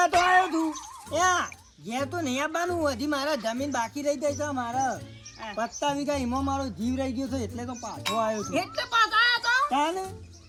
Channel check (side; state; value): both; identical; correlation 1.00